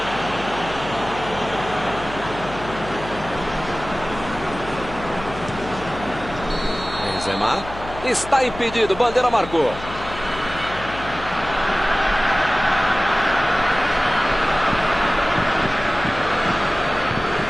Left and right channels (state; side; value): noise; left; hum, 13 dB below the sound